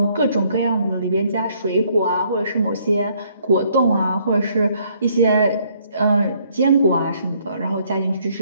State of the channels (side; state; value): both; inverted; correlation -0.66